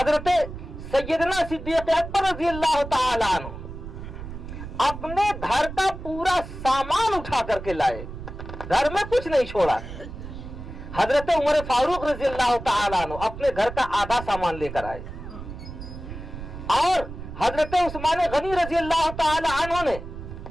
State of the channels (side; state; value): right; noise; rumble, 11 dB below the sound